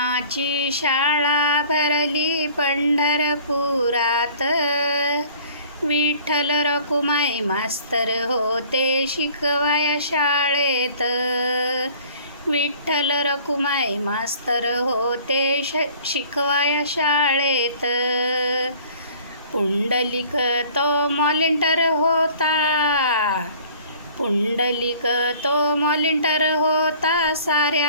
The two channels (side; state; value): both; inverted; correlation -0.51